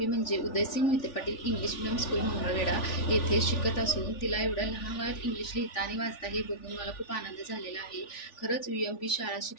म्हणजे Udaysingh Mohite Patil English medium school Mangalvedha येथे शिकत असून तिला एवढ्या लहान वयात इंग्लिश लिहिता आणि वाचता हे बघून मला खूप आनंद झालेला आहे. खरंच UMP शाळा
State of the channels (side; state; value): right; late; 3.4 ms